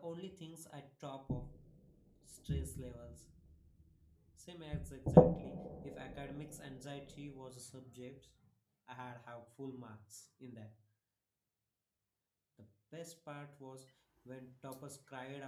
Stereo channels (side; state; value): both; identical; correlation 1.00